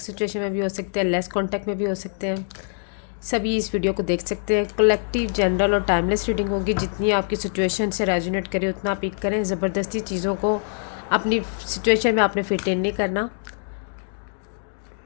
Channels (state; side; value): silent; right; digital silence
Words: सिचुएशन में भी हो सकते हैं, लेस कांटेक्ट में भी हो सकते हैं। सभी इस वीडियो को देख सकते हैं। कलेक्टिव, जनरल और टाइमलेस रीडिंग होगी। जितनी आपकी सिचुएशन से रेजोनेट करे उतना पिक करें। ज़बरदस्ती चीज़ों को अपनी सिचुएशन में आपने फिट इन नहीं करना।